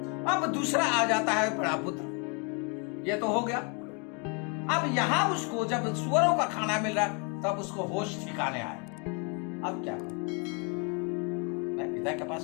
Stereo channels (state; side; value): quieter; right; 34.9 dB